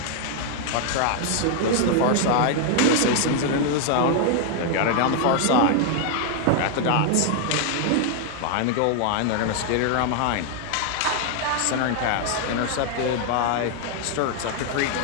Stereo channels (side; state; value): both; different; correlation 0.00